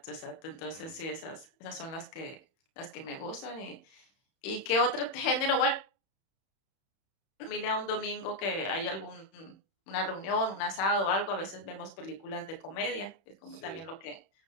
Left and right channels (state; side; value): late; right; 31 ms